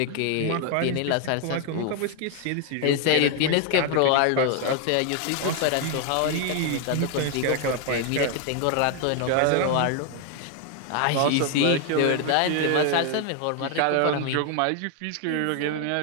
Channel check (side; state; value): both; different; correlation 0.01